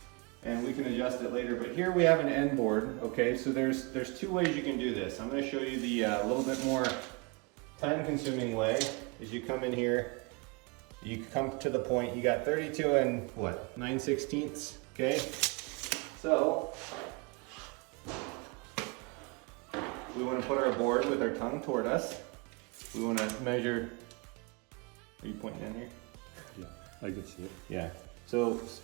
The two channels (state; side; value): quieter; left; 29.5 dB